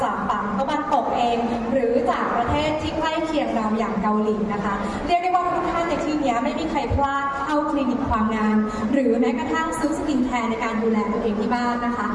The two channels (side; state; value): both; identical; correlation 1.00